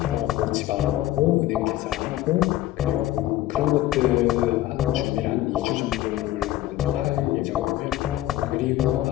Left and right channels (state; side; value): quieter; right; 14.8 dB